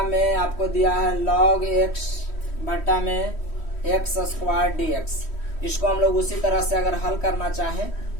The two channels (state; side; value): late; right; 3.1 ms